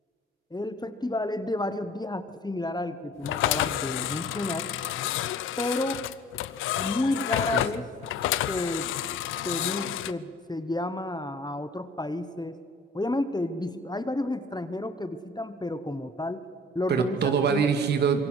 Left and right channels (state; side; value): normal; both; correlation 0.47